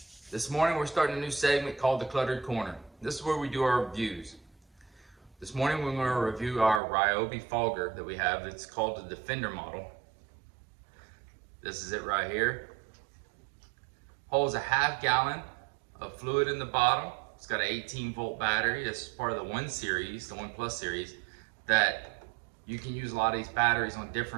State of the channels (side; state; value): left; drops out; at 6.8 s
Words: This morning we're starting a new segment called The Cluttered Corner. This is where we do our reviews. This morning we're going to review our Ryobi Fogger that we have. It's called the Defender model. This is it right here. Holds a half gallon of fluid in the bottom. It's got an 18-volt battery. It's part of the 1 series, the 1 Plus series, that you can use a lot of these batteries on